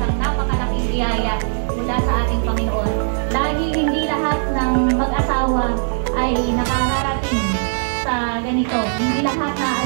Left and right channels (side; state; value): left; silent; 66 dB below the other